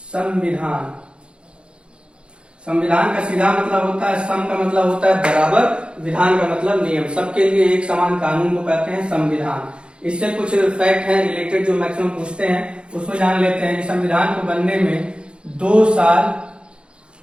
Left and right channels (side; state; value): left; late; 0.055 ms